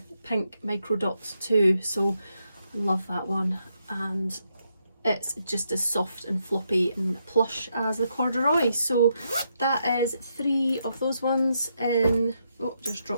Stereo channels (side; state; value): both; inverted; correlation -0.80